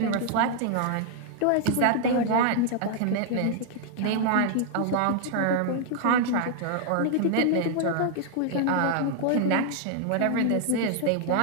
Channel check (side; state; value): both; different; correlation 0.00